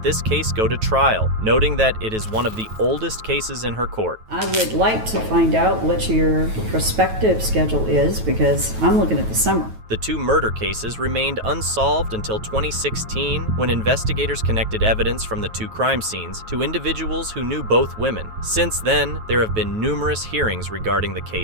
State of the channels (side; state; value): left; late; 9.2 ms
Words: this case go to trial, noting that it is one of the oldest cases in her court. I would like to find out what your prospective schedule is, because I'm looking at the summer. The 2 murder cases remained unsolved until 2016, when investigators connected evidence from the 2 crime scenes to individuals who knew both women. Since then, there have been numerous hearings regarding the